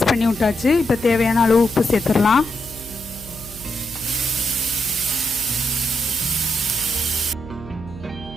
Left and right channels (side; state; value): right; noise; hum, 16 dB below the sound